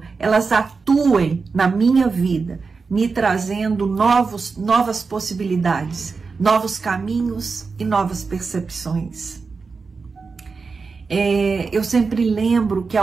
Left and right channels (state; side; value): quieter; left; 4.7 dB